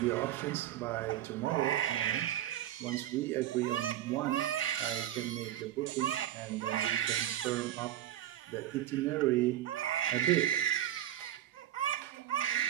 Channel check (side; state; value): left; quieter; 12.4 dB